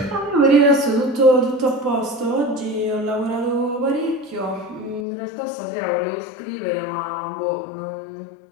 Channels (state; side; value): drops out; right; at 5.1 s